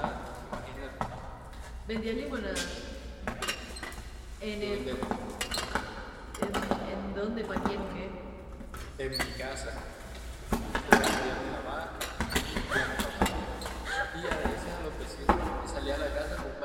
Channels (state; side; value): identical; both; correlation 1.00